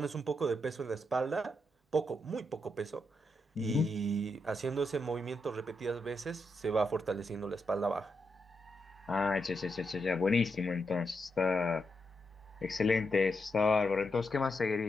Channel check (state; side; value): normal; both; correlation 0.83